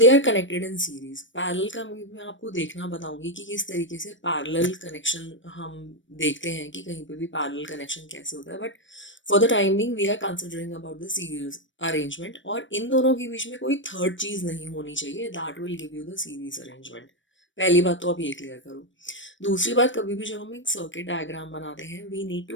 are connected in series. Parallel का मैं आपको देखना बताऊंगी कि किस तरीके से पैरेलल कनेक्शन हम देखते हैं कि कहीं पे भी पैरेलल कनेक्शन कैसे होता है, but for the timing we are considering about the series arrangement. और इन दोनों के बीच में कोई थर्ड चीज नहीं होनी चाहिए, that will give you the series arrangement. पहली बात तो आप ये क्लियर करो. दूसरी बात, कभी भी जब हम एक सर्किट डायग्राम बनाते हैं we need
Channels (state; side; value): late; right; 0.55 ms